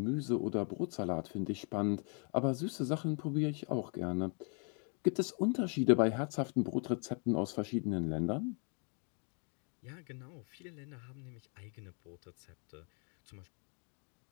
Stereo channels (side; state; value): right; quieter; 39.6 dB